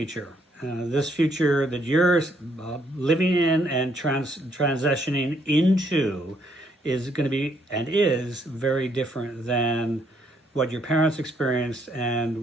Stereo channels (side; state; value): both; normal; correlation 0.71